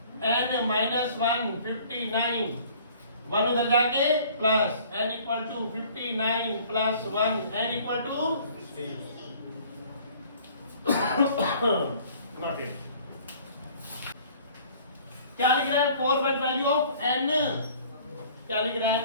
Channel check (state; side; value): inverted; both; correlation -0.52